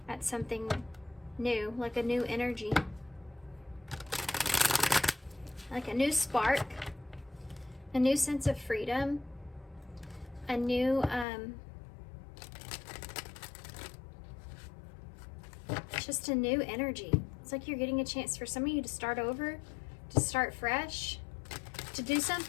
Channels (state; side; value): drops out; right; at 11.2 s